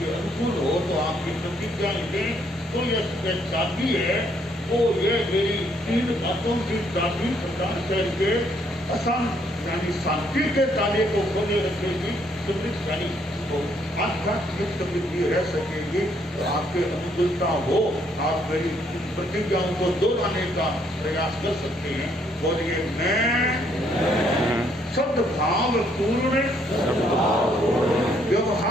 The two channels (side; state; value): both; normal; correlation 0.69